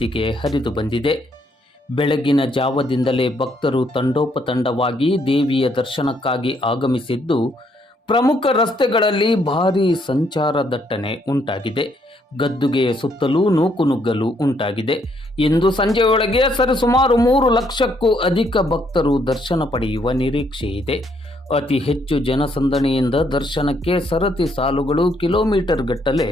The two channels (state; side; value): normal; both; correlation 0.71